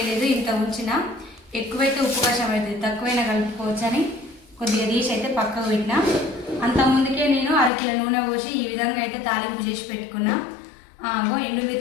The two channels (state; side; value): drops out; right; at 7.7 s